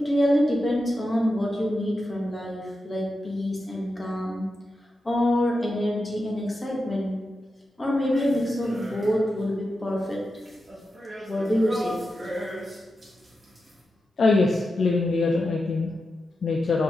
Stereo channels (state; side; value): normal; both; correlation 0.89